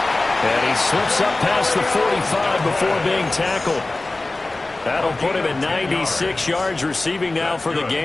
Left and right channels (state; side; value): quieter; right; 3.0 dB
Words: And he slips up past the 45 before being tackled. That'll put him at 96 yards receiving now for the